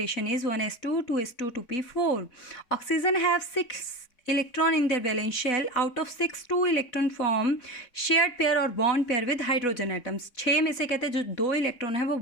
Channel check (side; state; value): right; late; 4.0 ms